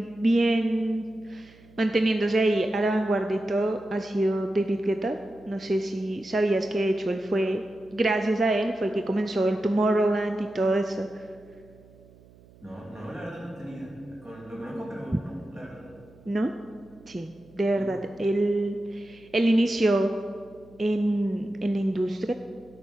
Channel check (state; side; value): noise; right; hum, 25 dB below the sound